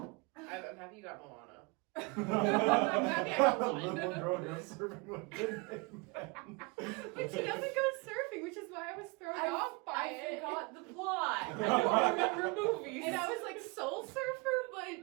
happy you got Moana. I'm happy I got one. Little girl goes surfing with big men. But she doesn't go surfing, which is why I was thrown off by I it. forgot the plot. I don't remember movies. And I was like, Soul Surfer,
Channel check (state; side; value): quieter; left; 28.2 dB